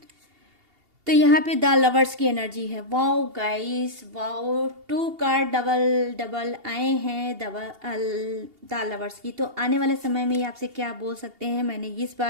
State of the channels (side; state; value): left; late; 2.8 ms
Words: तो यहाँ पे द लवर्स की एनर्जी है। Wow guys, wow, 2 card double double आए हैं द लवर्स की। तो आने वाले समय में ये आपसे क्या बोल सकते हैं, मैंने इस